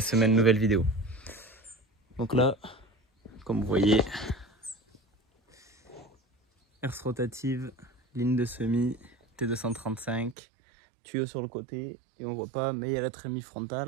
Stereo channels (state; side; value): drops out; left; at 10.4 s